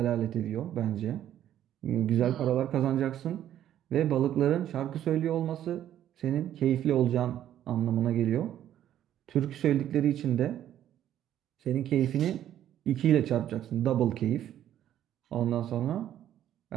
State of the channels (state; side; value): quieter; left; 11.4 dB